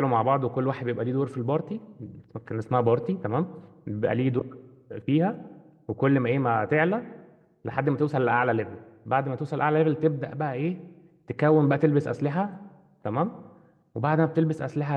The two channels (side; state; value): both; identical; correlation 1.00